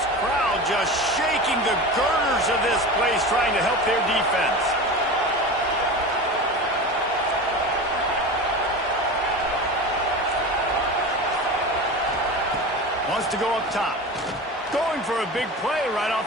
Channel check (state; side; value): normal; both; correlation 0.29